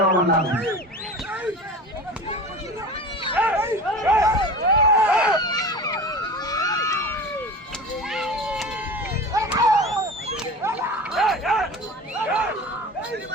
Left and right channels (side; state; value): both; normal; correlation 0.34